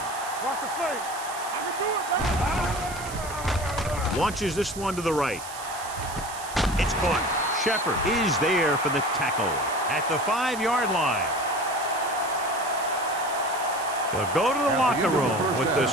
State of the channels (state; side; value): noise; right; hiss, 13 dB below the sound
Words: Watch the fake. I can do it, baby. Launches this one to the right. It's caught. Shepard is there for the tackle at the 5-yard line. They'll go to the locker room with the